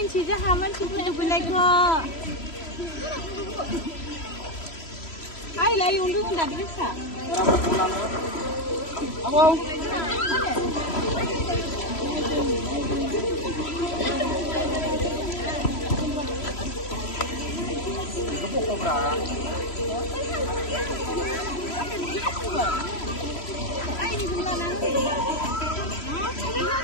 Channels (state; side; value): late; right; 3.0 ms